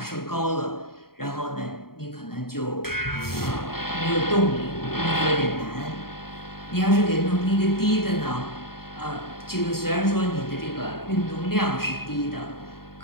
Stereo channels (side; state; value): right; late; 0.93 ms